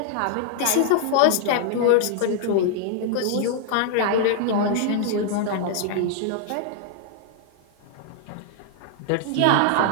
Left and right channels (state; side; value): different; both; correlation -0.01